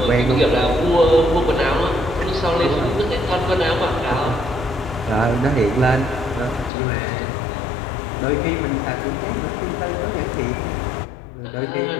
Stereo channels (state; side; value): drops out; right; at 6.7 s